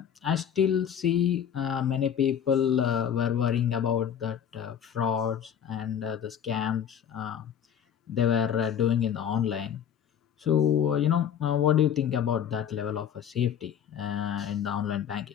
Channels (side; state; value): right; quieter; 8.9 dB